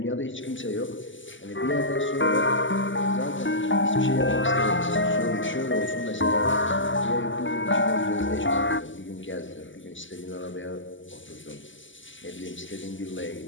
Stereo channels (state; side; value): late; right; 0.55 ms